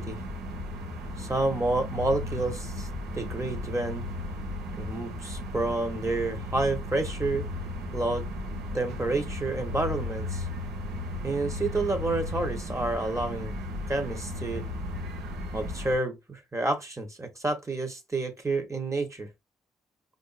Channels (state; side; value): normal; both; correlation 0.70